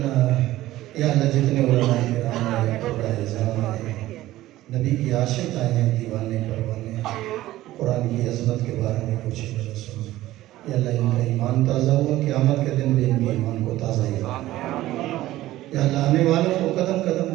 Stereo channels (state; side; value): quieter; left; 15.7 dB